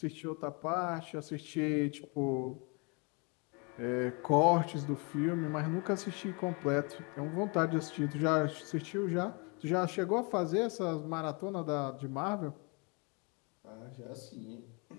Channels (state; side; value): quieter; right; 32.2 dB